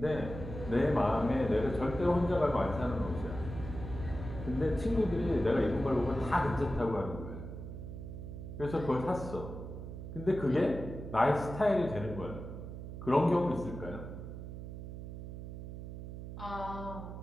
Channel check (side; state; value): right; noise; hum, 9 dB below the sound